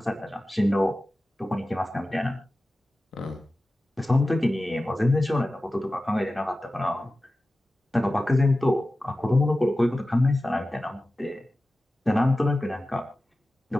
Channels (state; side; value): normal; both; correlation 0.95